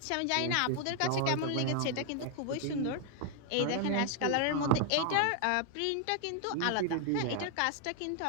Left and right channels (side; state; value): both; different; correlation 0.00